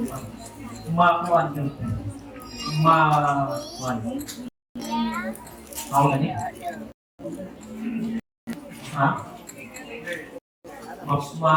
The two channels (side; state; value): both; identical; correlation 1.00